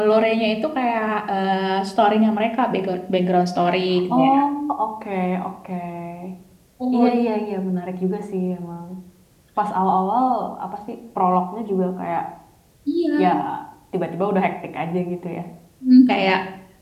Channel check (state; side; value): identical; both; correlation 1.00